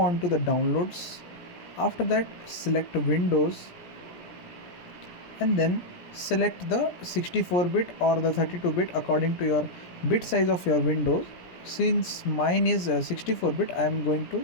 to the downloads. After that select Windows and then select the 64-bit or the 32-bit according to your bit size of your Windows. Since mine is 64-bit, I am going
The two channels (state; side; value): late; right; 17 ms